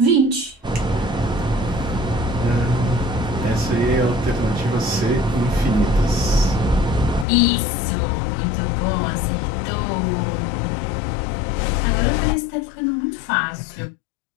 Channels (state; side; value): drops out; right; at 7.2 s